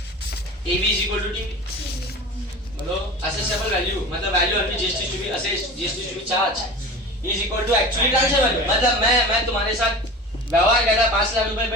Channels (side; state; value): both; normal; correlation 0.34